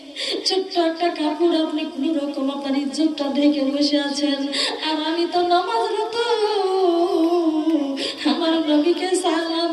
ছোট্ট একটা কাপড়, আপনি কোন রকম আপনার ইজ্জতটা ঢেকে বসে আছেন, আর আমি তো নামাজরত। আমার নবীকে সালাম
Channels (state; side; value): identical; both; correlation 1.00